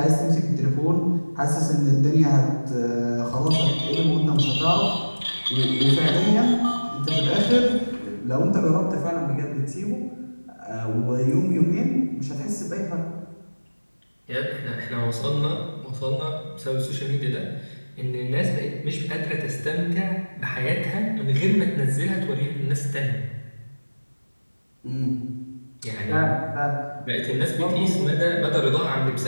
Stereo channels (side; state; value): both; inverted; correlation -1.00